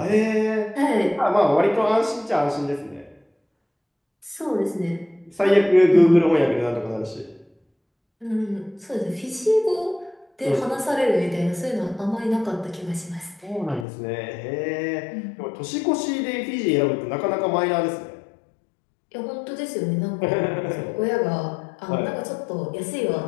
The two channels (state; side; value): drops out; right; at 13.9 s